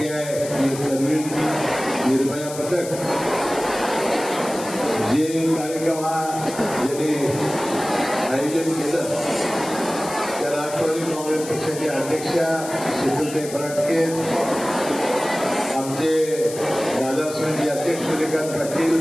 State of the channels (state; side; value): noise; left; hiss, 12 dB below the sound